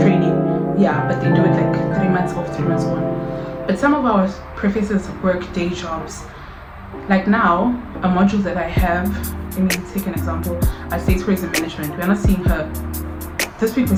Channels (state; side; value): identical; both; correlation 1.00